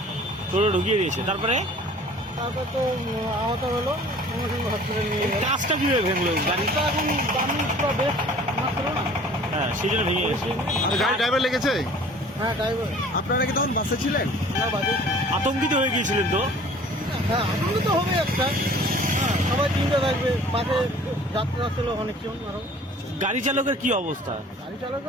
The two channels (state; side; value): normal; both; correlation 0.49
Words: টোটো ঢুকিয়ে দিয়েছে। তারপরে তো আহত হলো, সঙ্গে সঙ্গে হসপিটালে নিয়ে গেল। কাজটা কিভাবে ভেঙলো? গাড়িটা এখন দামি পুরো বেশ মাত্র না। হ্যাঁ, সেই জন্য ভেঙে গেছে। গাড়ি ড্রাইভার লেগেছে? হ্যাঁ, ড্রাইভার। আপনারা কি তখন বাসে ছিলেন? না, বাজে। আতঙ্কিত হয়ে গিয়েছিলেন তো? হ্যাঁ, আনন্দ তো হবে একটা। হ্যাঁ, সবাই চিন্তা থাকবে। বাসে যাত্রা ছিল অনেকজন আরো। গাড়ি চালকের কি অবস্থা? গাড়ি